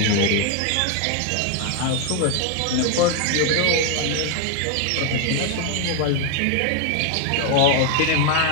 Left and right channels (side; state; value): both; different; correlation 0.01